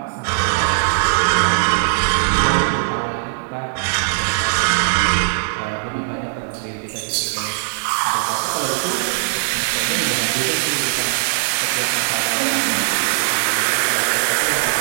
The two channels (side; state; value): left; silent; 56 dB below the other